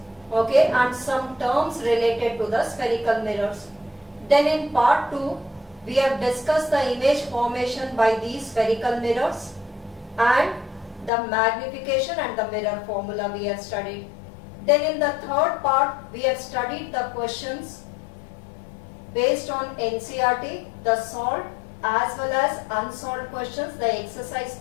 okay, and some terms related to the spherical mirrors. Then in part 2, we have discussed the image formation by these spherical mirrors and the magnification and the mirror formula we have studied. Then in the third part, we have studied the questions based on NCERT, the solved as well as unsolved questions, the exercise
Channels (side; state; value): right; drops out; at 11.1 s